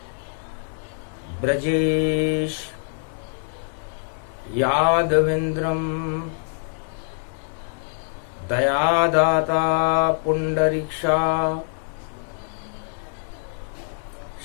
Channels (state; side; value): silent; right; digital silence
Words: ब्रजेश यादवेन्द्रं दयादाता पुंडरीक्षा